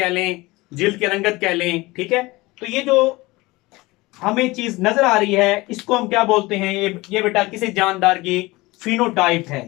लें, जिल्द की रंगत कह लें। ठीक है, तो ये जो हमें चीज नजर आ रही है इसको हम क्या बोलते हैं? ये बेटा किसी जानदार की फिनोटाइप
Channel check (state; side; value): quieter; right; 21.4 dB